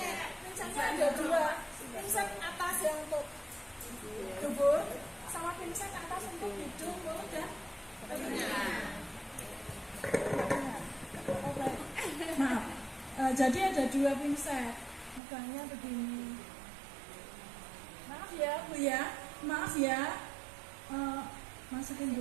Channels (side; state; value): left; drops out; at 15.2 s